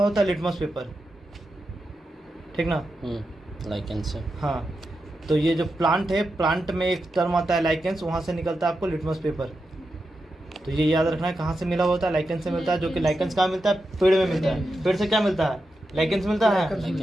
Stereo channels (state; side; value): normal; both; correlation 0.88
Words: है लिटमस पेपर। ठीक ना, लाइकेंस से। हाँ, तो ये जो प्लांट है, प्लांट में एक टर्म आता है लाइकेंस, वहाँ से निकलता है आपको लिटमस पेपर। तो ये याद रखना है कहाँ से मिला होता है, लाइकेंस से मिलता है। जो कि लाइकेंस कहाँ मिलता है, पेड़ में मिलता है। पेड़ से क्या मिलता है, लाइकेंस मिलता